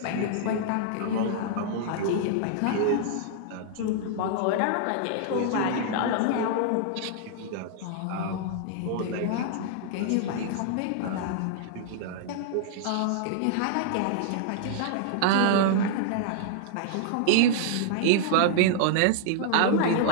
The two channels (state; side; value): different; both; correlation -0.01